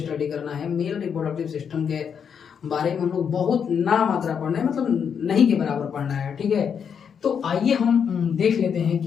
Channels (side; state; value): right; quieter; 7.2 dB